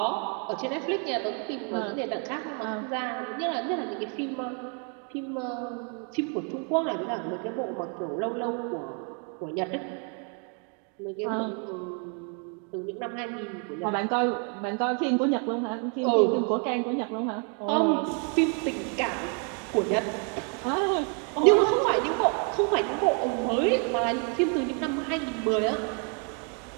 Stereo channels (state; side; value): quieter; left; 38.9 dB